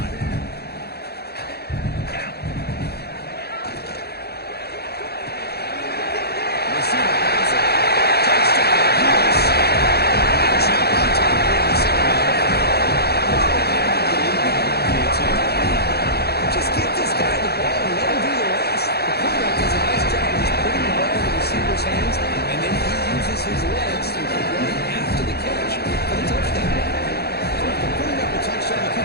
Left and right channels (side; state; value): right; late; 0.47 ms